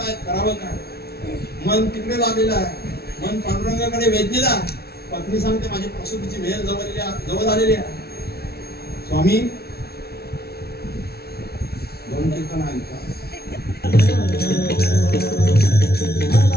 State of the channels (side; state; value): right; late; 0.45 ms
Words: करावं काय मन तिकडे लागलेलं आहे मन पांडुरंगाकडे वेधलेलं आहे पत्नी सांगते माझी प्रसूतीची वेळ जवळ आलेली आहे स्वामी दोन कीर्तन ऐका